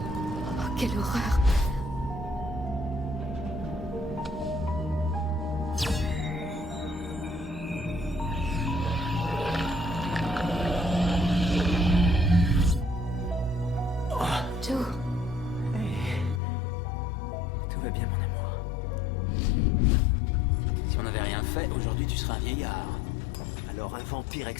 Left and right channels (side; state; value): right; drops out; at 16.4 s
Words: Oh, quelle horreur! Joe? Tout va bien, mon amour. Si on n'avait rien fait, aujourd'hui tu serais un vieillard. Alors un vampire